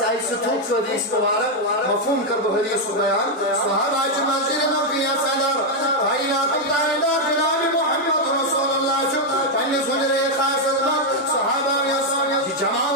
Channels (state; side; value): normal; both; correlation 0.00